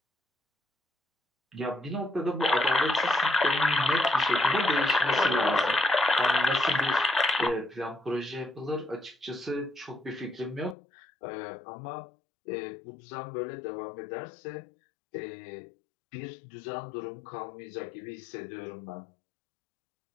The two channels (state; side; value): drops out; right; at 10.8 s